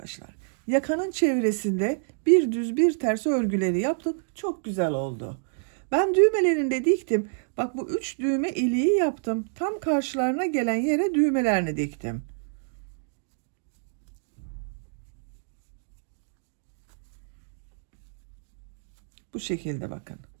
Yakanın çevresinde bir düz bir ters örgüleri yaptık. Çok güzel oldu. Ben düğmelerini de diktim. Bak bu 3 düğme iliği yaptım. Tam karşılarına gelen yere düğmelerini diktim. Bu şekilde bakın.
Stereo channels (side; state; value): left; silent; digital silence